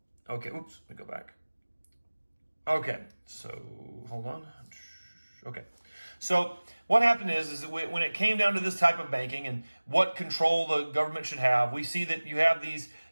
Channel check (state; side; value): inverted; both; correlation -1.00